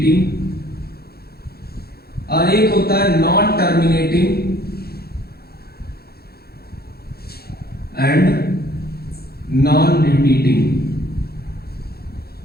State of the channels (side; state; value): right; late; 0.46 ms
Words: और एक होता है non terminating and non repeating.